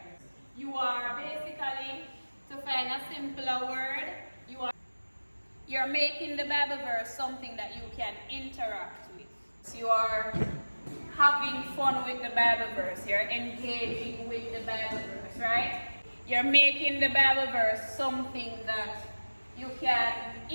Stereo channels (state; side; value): inverted; both; correlation -1.00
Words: You are basically, to find a simpler word, you're making the Bible verse something that you can interact with. So you are having fun with the Bible verse. You're engaging with the Bible verse, right? You're making the Bible verse something that you can